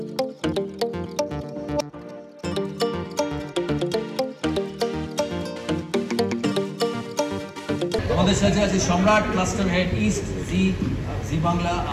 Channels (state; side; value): identical; both; correlation 1.00